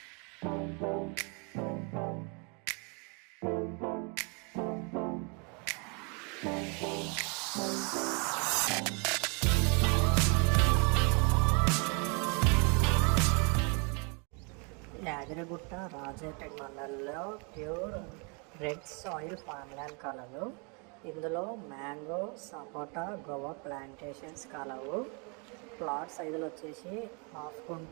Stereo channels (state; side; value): quieter; left; 34.2 dB